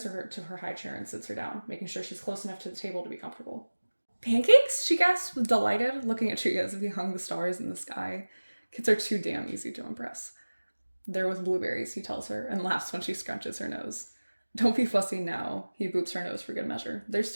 her to her high chair and sits her down, making sure she's close enough to the table to be comfortable. Pancakes? She gasps, delighted, looking at Chuya as if he hung the stars in the sky. Kids are too damn easy to impress. They're with blueberries, he tells her, and laughs when she scrunches her nose. Don't be fussy now, he boops her nose for good measure. They're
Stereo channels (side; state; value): both; inverted; correlation -1.00